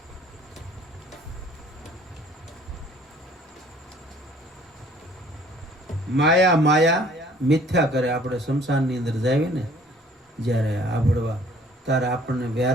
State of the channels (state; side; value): normal; both; correlation 0.56